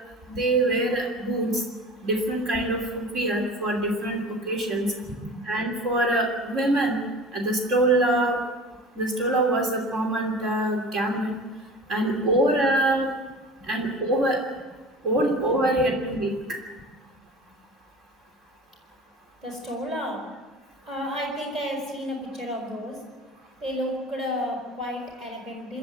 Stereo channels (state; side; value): normal; both; correlation 0.39